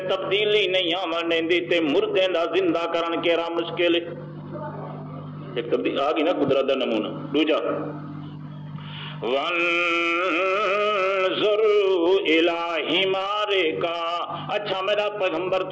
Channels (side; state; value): both; identical; correlation 1.00